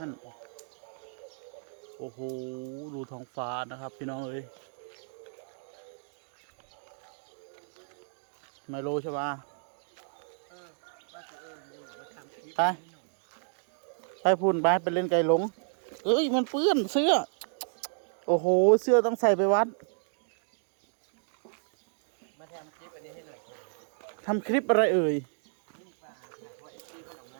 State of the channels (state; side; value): silent; left; digital silence